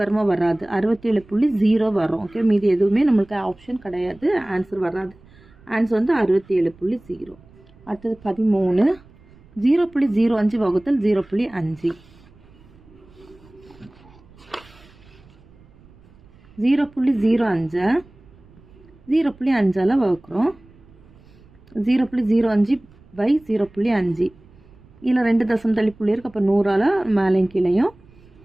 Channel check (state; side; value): noise; right; rumble, 26 dB below the sound